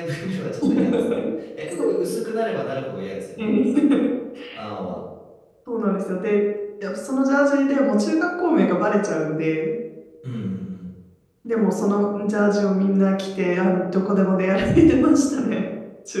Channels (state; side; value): identical; both; correlation 1.00